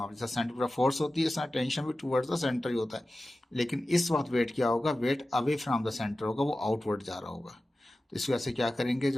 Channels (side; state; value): both; normal; correlation 0.95